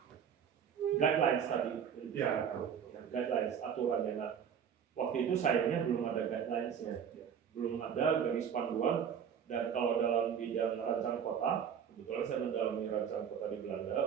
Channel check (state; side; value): quieter; left; 7.9 dB